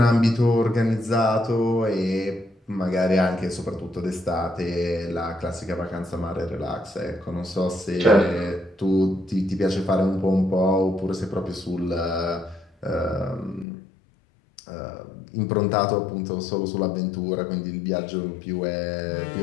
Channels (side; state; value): right; drops out; at 13.7 s